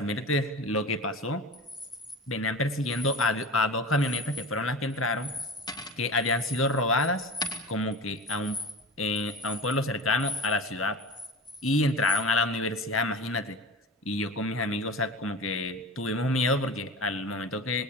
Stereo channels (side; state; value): both; normal; correlation 0.33